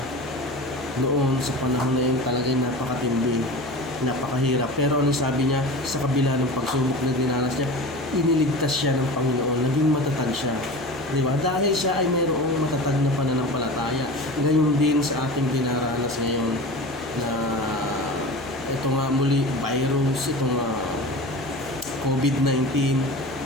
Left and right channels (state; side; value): noise; left; hum, 21 dB below the sound